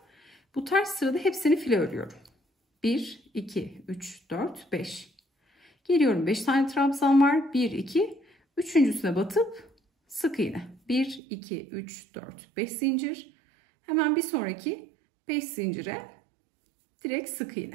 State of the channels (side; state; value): left; drops out; at 11.2 s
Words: Bu ters sırada hepsini file örüyorum. 1, 2, 3, 4, 5. Geliyorum 5 tane trabzan var. 1, 2, üçüncüsüne batıp sık iğne. 1, 2, 3, 4, 5 zincir. Hemen bir sonraki 5 zincire direkt sık